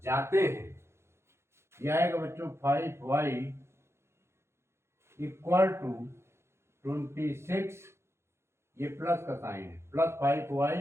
जाते हैं। यह आएगा बच्चों 5y इक्वल टू 26, ये प्लस का साइन है, plus 5y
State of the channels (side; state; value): left; late; 0.13 ms